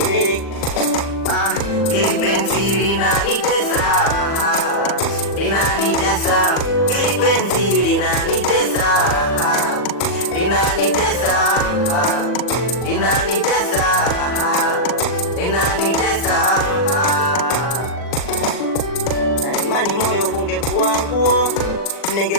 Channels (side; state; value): right; late; 40 ms